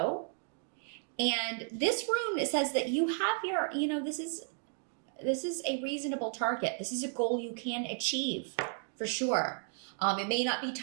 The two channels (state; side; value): silent; left; 55 dB below the other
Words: And this rune, it says that you have your, this is a reasonable target. This is a goal you can achieve for sure. It may not be